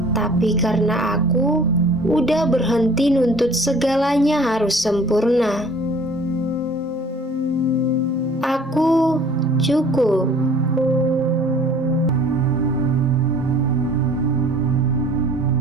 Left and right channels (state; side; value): normal; both; correlation 0.51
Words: tapi karena aku udah berhenti nuntut segalanya harus sempurna. Aku cukup.